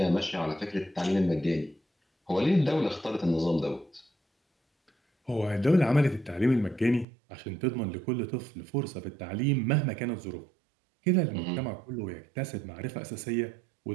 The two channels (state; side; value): drops out; left; at 7.1 s